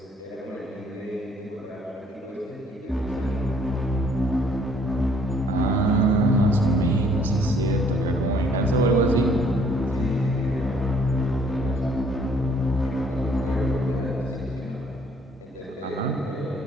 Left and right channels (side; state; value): both; normal; correlation 0.61